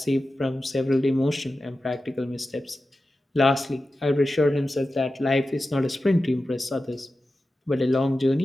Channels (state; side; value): normal; both; correlation 0.93